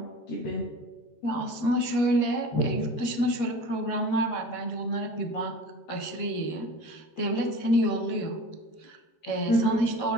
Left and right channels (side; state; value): right; late; 13 ms